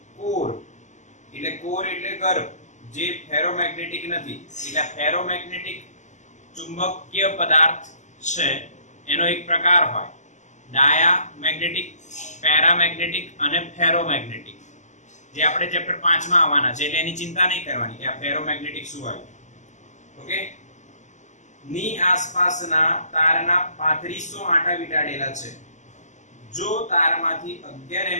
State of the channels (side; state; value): right; late; 0.34 ms